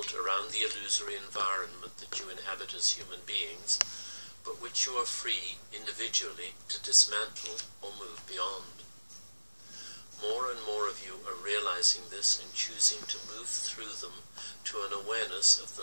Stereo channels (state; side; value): inverted; both; correlation -1.00